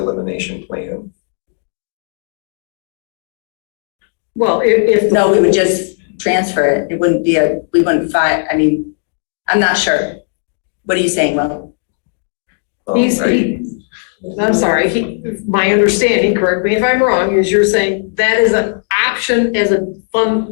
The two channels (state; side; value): silent; right; digital silence